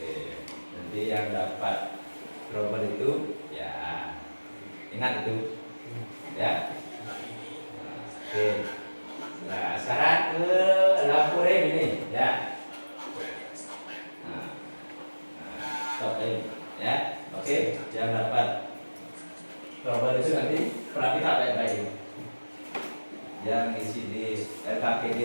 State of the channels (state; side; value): inverted; both; correlation -1.00